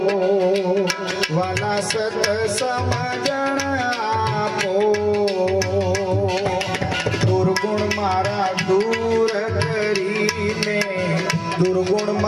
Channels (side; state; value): both; identical; correlation 1.00